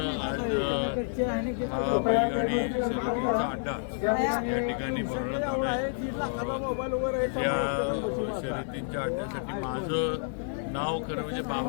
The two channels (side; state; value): right; silent; 58 dB below the other